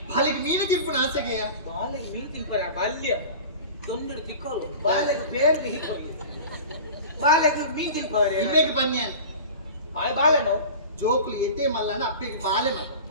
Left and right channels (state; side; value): inverted; both; correlation -0.36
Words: ಬಾಲಿಗೆ ಮೀನು ತಿನ್ಪುನ ಆಸೆಗೆಯ ಬಾಲೆಗೆ ಮೀನು ತಿನ್ಪರ ಬಾಲ್ಯ ತೊಂದರೆ ತಿಕ್ಕೋರು ಬಾಲೆಗೆ ಬೇಗ ಹಿಕ್ಕೋರು ಬಾಲೆಗೆ ಮೀನು ತಿನ್ಪವರೆ ಇಮ್ಮೆಗೆ ಬನ್ಯಾನ್ ಆ ಬಾಲೆನೋ ಜೋಕ್ಲಿ ಎತ್ತೆ ಮಲ್ಲನ ಅಪ್ಪೆಗೆ ಬಾಲೆ ಮಲ್ಲ